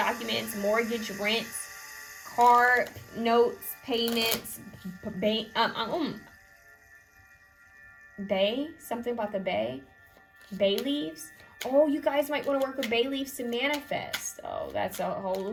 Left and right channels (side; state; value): both; identical; correlation 1.00